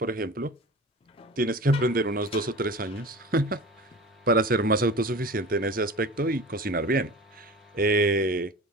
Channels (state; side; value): normal; both; correlation 0.35